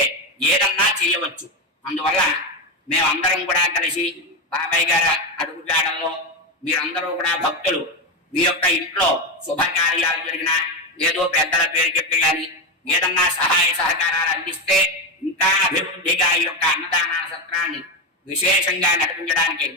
ఏదన్నా చేయవచ్చు. అందువల్ల మేమందరం కూడా కలిసి బాబాయ్ గారి అడుగుజాడల్లో మీరందరూ కూడా భక్తులు మీ యొక్క ఇంట్లో శుభకార్యాలు జరిగినా ఏదో పెద్దల పేరు చెప్పేయాలి, ఏదన్నా సహాయ సహకారాలు అందిస్తే ఇంకా అభివృద్ధిగా ఈ యొక్క అన్నదాన సత్రాన్ని విశేషంగా నడిపించడానికి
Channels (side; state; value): both; normal; correlation 0.13